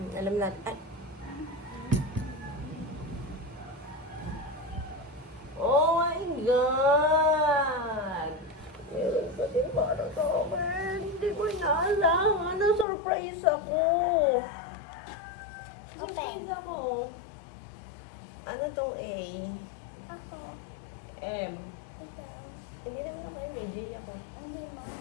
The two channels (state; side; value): drops out; right; at 12.9 s